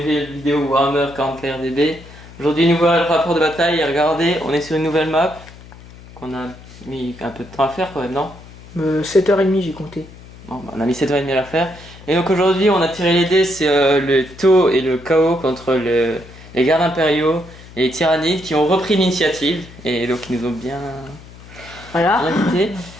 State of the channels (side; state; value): left; noise; hum, 19 dB below the sound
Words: vidéo Warhammer 40k RDB. Aujourd'hui, nouveau rapport de bataille, et regardez, on est sur une nouvelle map qu'on a mis un peu de temps à faire quand même, non 7h30 j'ai compté. Bon, bah, on a mis 7h30 à la faire. Et donc aujourd'hui, on a tiré les dés, c'est le taux et le chaos contre les gardes impériaux et les tyrannides qui ont repris l'initiative et donc ils nous ont bien invités.